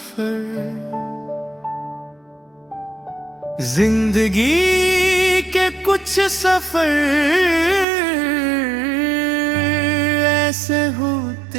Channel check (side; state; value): left; drops out; at 7.9 s